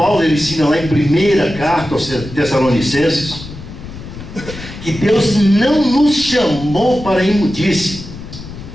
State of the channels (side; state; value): left; noise; rumble, 13 dB below the sound